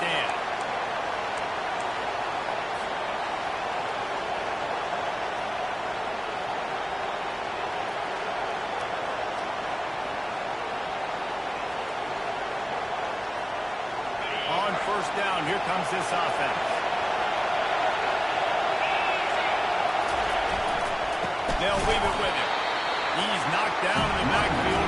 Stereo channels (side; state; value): both; identical; correlation 1.00